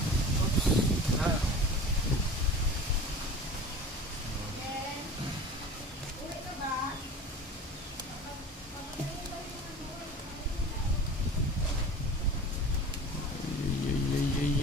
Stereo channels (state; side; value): normal; both; correlation 0.38